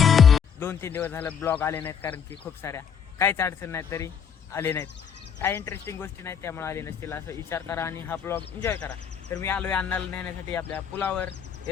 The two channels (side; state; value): right; quieter; 7.4 dB